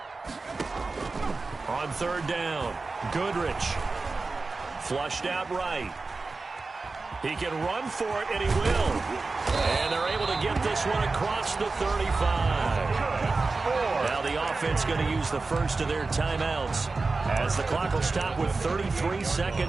On 3rd down, Goodrich. Flushed out right. He can run for it, and he will. And they're able to get this one across the 35. Now the offense going to use the first of their timeouts as the clock will stop with 33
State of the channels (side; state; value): left; quieter; 3.8 dB